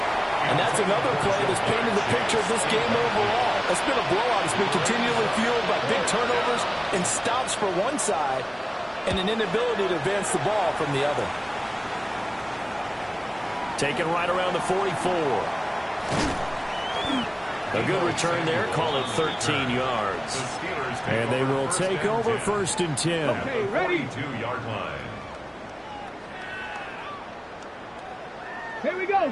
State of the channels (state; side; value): identical; both; correlation 1.00